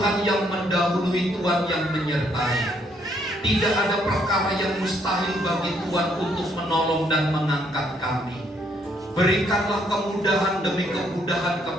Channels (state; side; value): normal; both; correlation 0.70